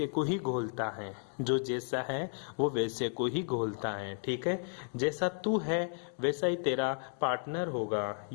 को ही घोलता है, जो जैसा है वो वैसे को ही घोलता है। ठीक है, जैसा तू है वैसा ही तेरा पार्टनर होगा।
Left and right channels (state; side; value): silent; right; 55 dB below the other